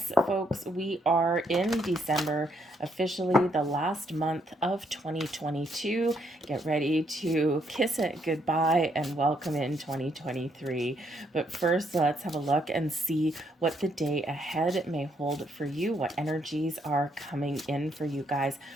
folks, we are in December, officially the last month of 2022. Get ready to kiss it goodbye and welcome in 2023. But first, let's have a look and see what the day ahead may hold for you, what energies are coming in for you guys.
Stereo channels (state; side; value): normal; both; correlation 0.73